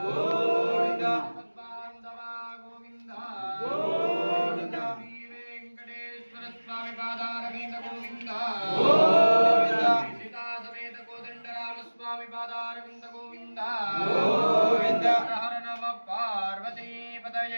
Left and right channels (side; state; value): both; inverted; correlation -1.00